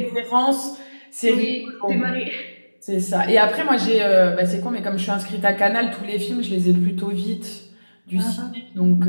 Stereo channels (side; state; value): both; inverted; correlation -1.00